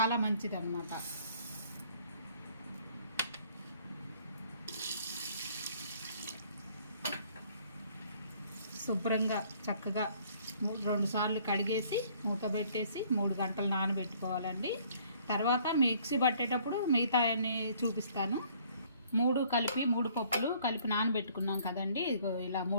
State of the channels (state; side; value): inverted; both; correlation -0.59